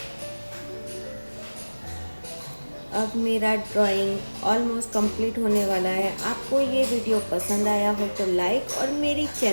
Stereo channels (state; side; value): inverted; both; correlation -1.00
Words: अब मेरा ड्राइंग ऑलमोस्ट कंप्लीट होने वाला है। आपको ये वीडियो पसंद आया हो तो लाइक और मेरी